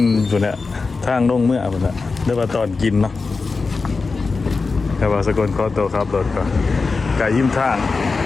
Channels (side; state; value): right; quieter; 4.2 dB